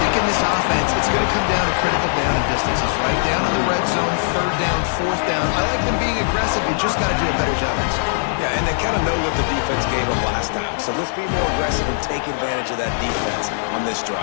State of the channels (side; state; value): right; silent; digital silence